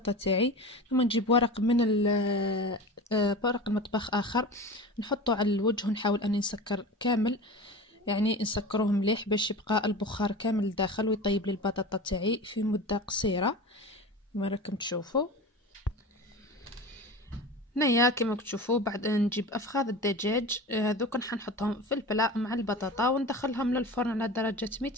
تاعي، ثم نجيب ورق من ورق المطبخ اخر نحطه على الوجه، ونحاول اني نسكر كامل، يعني نسكروه مليح باش يبقى البخار كامل داخل ويطيب لي البطاطا تاعي في مده قصيره كما راكم تشوفوا. هنايا كما تشوفوا بعد نجيب افخاذ الدجاج هذوك نحطهم في البلاء مع البطاطا، وندخلهم للفرن على درجه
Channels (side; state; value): both; normal; correlation 0.32